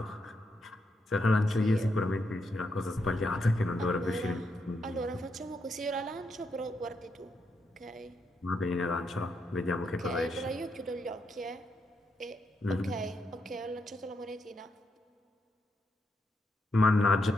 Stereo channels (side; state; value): both; normal; correlation 0.81